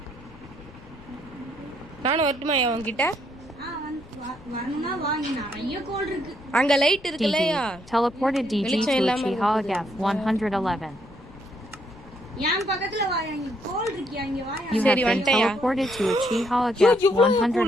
நானும் வரட்டுமா உங்ககிட்ட? வரணும்னா வாங்க, நிறைய கோல் இருக்கு. அங்க லைட் இருக்குல்லையா? Teleported DG to Uchiha Gap 111. என் பக்கத்துல வா, அங்க கோல் இருக்கு, அங்க வா. You have been teleported to Uchiha Gap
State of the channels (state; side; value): noise; left; rumble, 21 dB below the sound